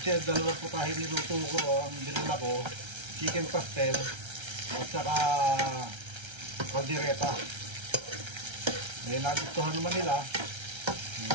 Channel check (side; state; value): left; late; 1.3 ms